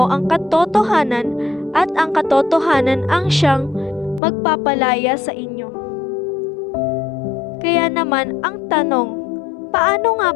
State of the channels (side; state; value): right; drops out; at 4.2 s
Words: ang katotohanan at ang katotohanan ang siyang magpapalaya sa inyo." Kaya naman ang tanong, paano nga